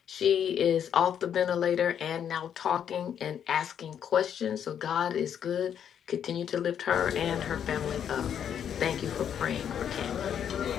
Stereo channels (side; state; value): right; quieter; 8.8 dB